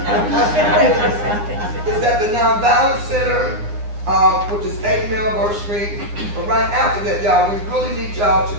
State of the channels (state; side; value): late; left; 9.6 ms